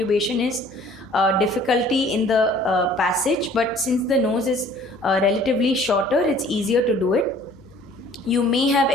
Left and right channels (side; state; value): left; noise; hum, 27 dB below the sound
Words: is difficulty in the passage, but since the nose is relatively shorter, it's easier to do it. You may have